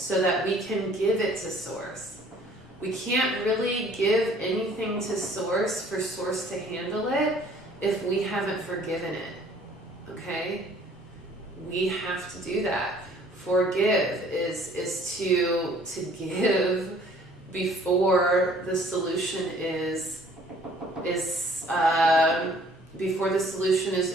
that we can give it to Source. We can't really give anything to Source for Source to handle it if we haven't forgiven it, okay? We have to do that. Forgive is to give before the solution is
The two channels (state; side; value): normal; both; correlation 0.56